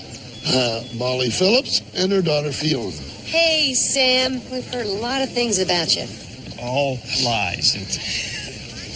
Molly Phillips and her daughter Fiona. Hey, Sam. We've heard a lot of things about you. All lies.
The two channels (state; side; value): identical; both; correlation 1.00